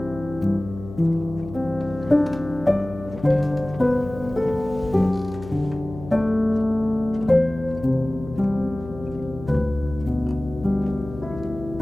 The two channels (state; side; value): noise; left; hum, 14 dB below the sound